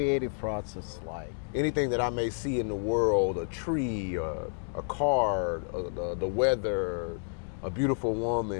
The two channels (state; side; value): silent; right; digital silence